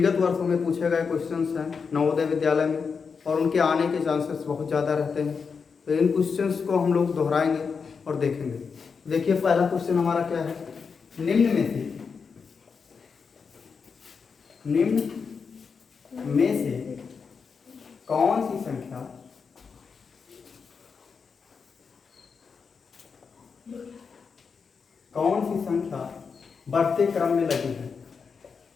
वर्षों में पूछे गए क्वेश्चंस हैं नवोदय विद्यालय में और उनके आने के चांसेस बहुत ज़्यादा रहते हैं, तो इन क्वेश्चंस को हम लोग दोहराएंगे और देखेंगे। देखिए, पहला क्वेश्चन हमारा क्या है। निम्न में से कौन सी संख्या बढ़ते क्रम में लगी है।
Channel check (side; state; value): right; quieter; 5.6 dB